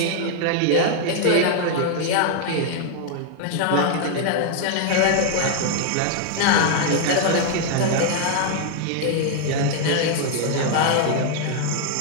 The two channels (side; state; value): both; different; correlation 0.00